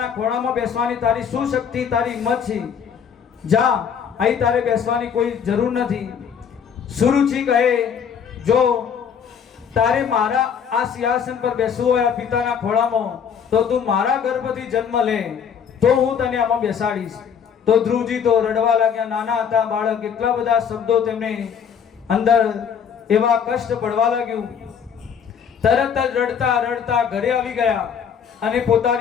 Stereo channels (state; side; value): quieter; right; 7.4 dB